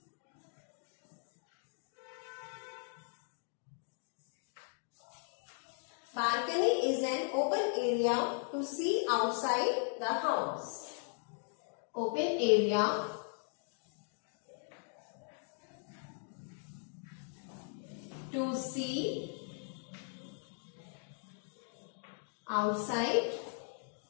Balcony is an open area to see outside the house. Open area to see outside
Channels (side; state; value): right; silent; 52 dB below the other